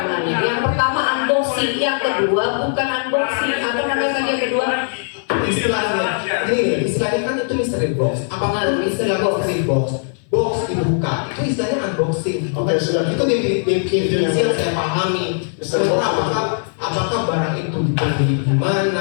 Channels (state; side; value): silent; right; 58 dB below the other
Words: Yang pertama unboxing, yang kedua bukan unboxing. Apa namanya tadi yang kedua? Istilahnya kan itu mystery box. Apakah itu mystery box? Box dibuka, itu istilahnya unboxing. Oke, sudah. Itu definisi yang saya pahami. Apakah barang itu dibeli di